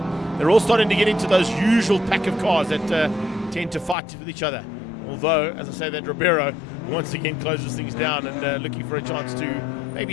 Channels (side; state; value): right; drops out; at 4.0 s